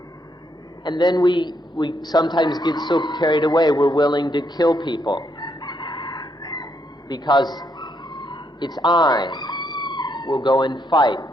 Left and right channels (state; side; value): normal; both; correlation 0.76